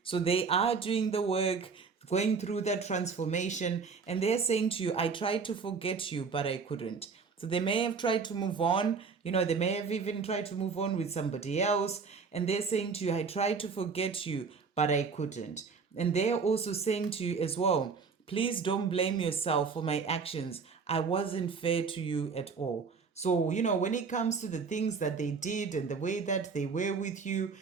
So they are doing the work, going through that transformation, and they're saying to you, I tried to forget you, but I couldn't. So they may have tried to move on, they may have even tried to move on with somebody else, and they're saying to you, I tried to forget you, but I couldn't. And they're also saying to you as well, please don't blame yourself for my actions. I wasn't fair to you at all. So, when it comes to the things that they did and the way that they were with you,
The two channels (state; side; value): quieter; left; 5.1 dB